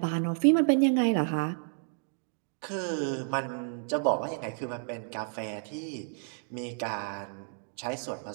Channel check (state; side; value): silent; left; 57 dB below the other